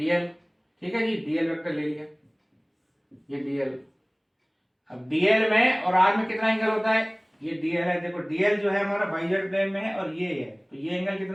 ठीक है जी, डीएल वेक्टर ले लिया, ये डीएल। अब डीएल में और आर में कितना एंगल होता है, ये डीएल है, देखो डीएल जो है हमारा वाईजेड प्लेन में है और ये है, तो ये एंगल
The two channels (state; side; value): identical; both; correlation 1.00